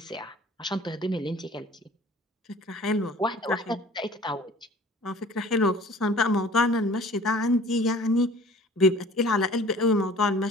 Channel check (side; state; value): both; normal; correlation 0.47